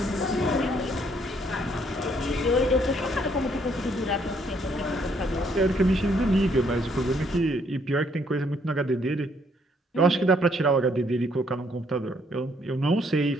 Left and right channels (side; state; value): both; normal; correlation 0.68